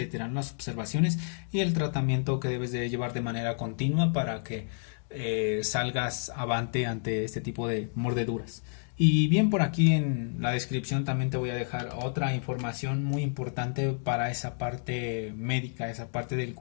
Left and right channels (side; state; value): right; silent; digital silence